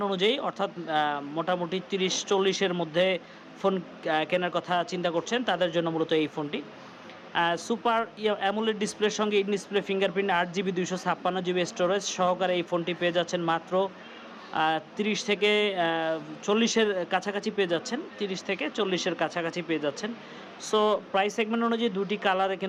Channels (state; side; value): identical; both; correlation 1.00